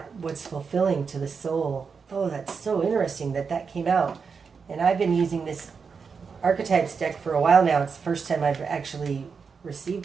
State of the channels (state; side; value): quieter; left; 5.6 dB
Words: what's fulfilling to the soul. Oh, that's so interesting that came out. And I've been using this archetypes deck for a while now. It's the first time I've actually